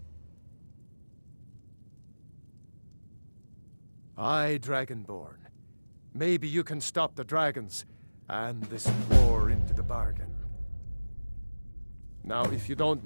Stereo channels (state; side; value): inverted; both; correlation -1.00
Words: Aye, Dragonborn. Maybe you can stop the dragons, and this war into the bargain. Now, if you don't